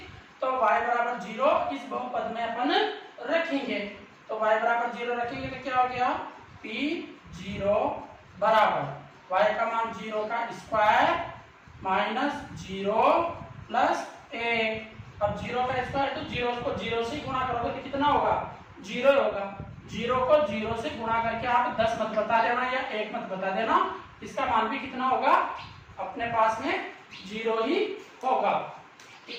तो y बराबर 0 इस बहुपद में अपन रखेंगे। तो y बराबर 0 रखेंगे तो क्या हो गया, P0 बराबर y का मान 0 का स्क्वायर माइनस 0 प्लस a। अब 0 का स्क्वायर तो 0 को 0 से गुणा करोगे तो कितना होगा, 0 होगा। 0 को 0 से गुणा करके आप 10 मत बता देना या 1 मत बता देना, इसका मान भी कितना होगा, अपने पास में 0 ही होगा,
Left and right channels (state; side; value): identical; both; correlation 1.00